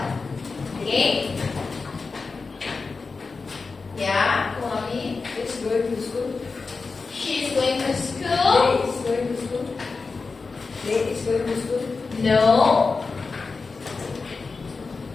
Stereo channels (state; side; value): quieter; right; 4.3 dB